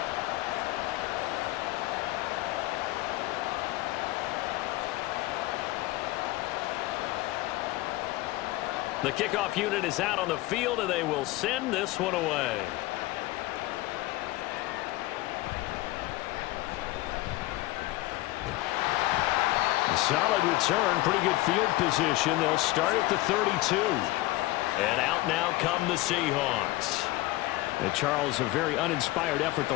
The kickoff unit is out on the field, and they will send this one away. Solid return, pretty good field position. They'll start at the 32. And out now come the Seahawks. And Charles, a very uninspired effort.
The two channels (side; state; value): right; quieter; 18.5 dB